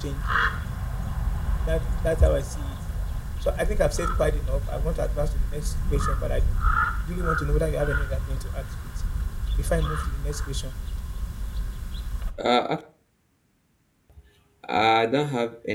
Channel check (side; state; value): both; identical; correlation 1.00